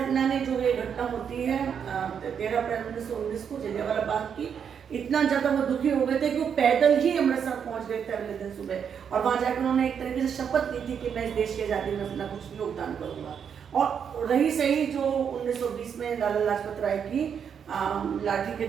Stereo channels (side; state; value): left; quieter; 7.5 dB